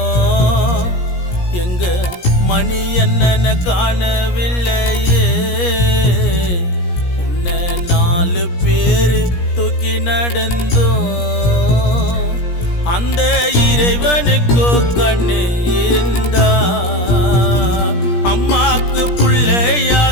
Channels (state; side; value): late; right; 17 ms